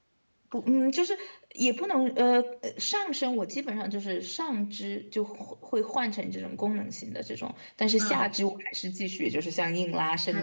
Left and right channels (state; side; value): inverted; both; correlation -1.00